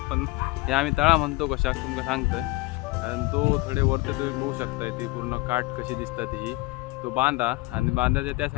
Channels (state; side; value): quieter; right; 22.1 dB